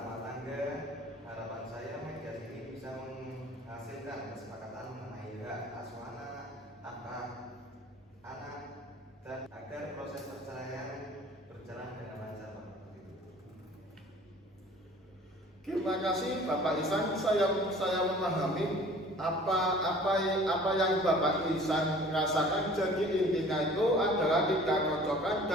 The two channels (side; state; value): both; normal; correlation 0.48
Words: tangga, harapan saya mediasi ini bisa menghasilkan kesepakatan mengenai hak asuh anak, dan agar proses perceraian berjalan dengan lancar, Pak. Terima kasih Bapak Ihsan. Saya memahami apa yang Bapak Ihsan rasakan. Jadi intinya itu adalah tidak cocokan